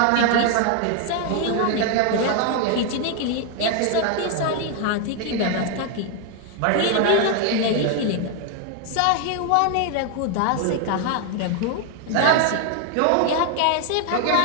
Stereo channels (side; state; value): both; different; correlation 0.00